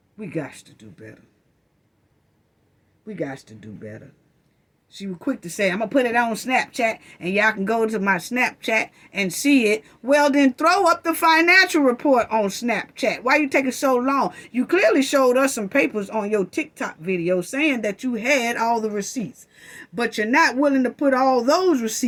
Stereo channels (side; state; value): both; identical; correlation 1.00